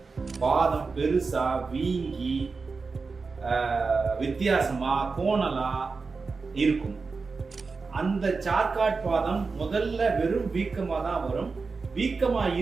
பாதம் பெருசா வீங்கி வித்தியாசமா கோணலா இருக்கும். அந்த சார்காட் பாதம் முதல்ல வெறும் வீக்கமா தான் வரும். வீக்கமா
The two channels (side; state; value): left; quieter; 4.4 dB